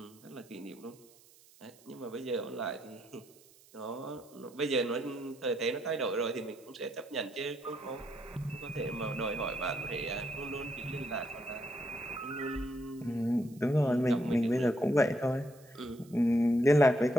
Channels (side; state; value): right; noise; hiss, 26 dB below the sound